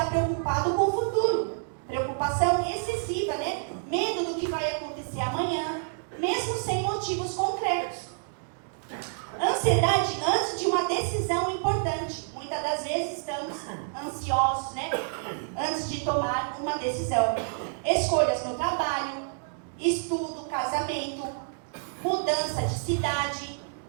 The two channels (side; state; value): left; silent; digital silence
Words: preocupado com o futuro. Preocupação excessiva, né? Medo do que vai acontecer amanhã, mesmo sem motivos concretos. Ansiedade antes de uma decisão importante. Muitas das vezes estamos ansiosos, né? Antes de tomar uma decisão. Escolhas no trabalho, estudo, casamento, mudança de cidade.